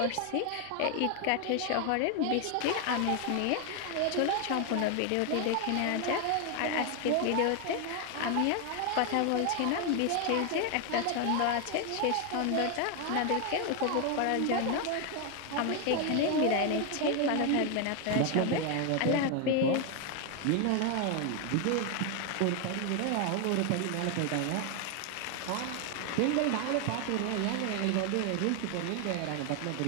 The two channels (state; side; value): different; both; correlation 0.01